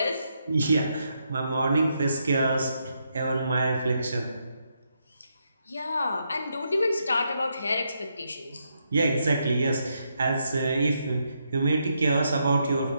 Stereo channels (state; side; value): inverted; both; correlation -0.80